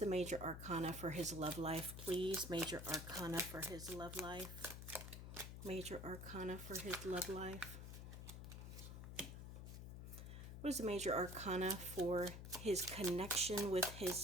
major arcana for his love life, please? Major arcana for his love life. Major arcana for his love life. What is the major arcana for his connection with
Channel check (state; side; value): noise; left; hum, 9 dB below the sound